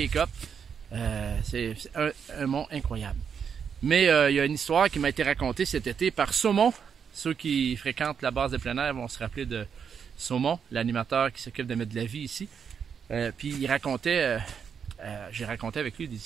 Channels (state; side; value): quieter; left; 7.1 dB